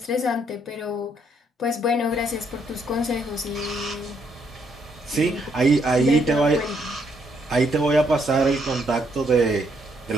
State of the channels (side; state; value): both; normal; correlation 0.73